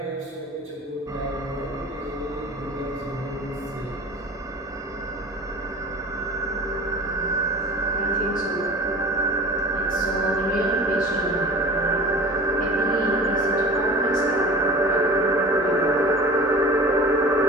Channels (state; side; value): normal; both; correlation 0.38